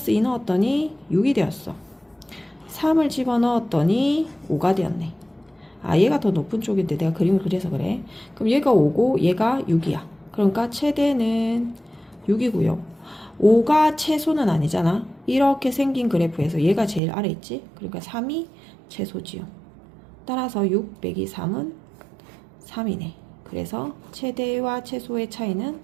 2 넣었더니 6이 되었어. 3을 집어넣었더니 5가 되었네. 아 얘가 더 높은 쪽인데 내가 그림을 그려서 그래. 그럼 얘가 5고 얘가 6이야. 그러니까 최대는 6이고요. 5가 최소는 아니잖아. 이렇게 생긴 그래프에서 얘가 제일 아래 있지. 그러니까 3이 최소지요. 따라서 6 빼기 3은 3이네. 그래서 최대와 최소의 차이는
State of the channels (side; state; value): left; drops out; at 17.0 s